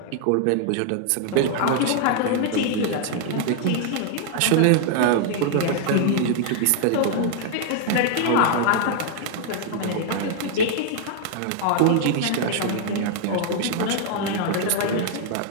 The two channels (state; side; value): different; both; correlation 0.00